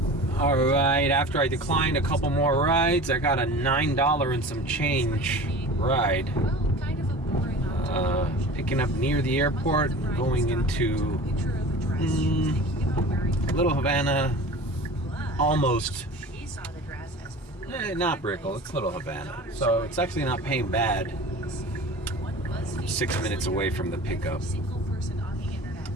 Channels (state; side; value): normal; both; correlation 0.38